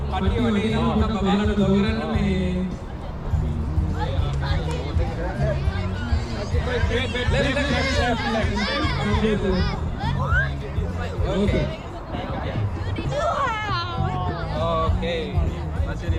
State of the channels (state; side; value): identical; both; correlation 1.00